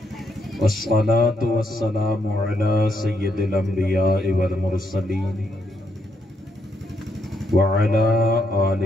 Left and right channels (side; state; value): both; normal; correlation 0.76